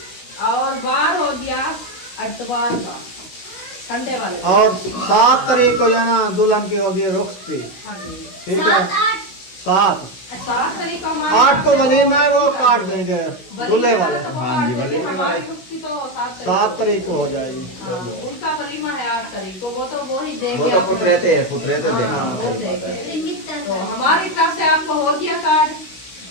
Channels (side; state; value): right; late; 16 ms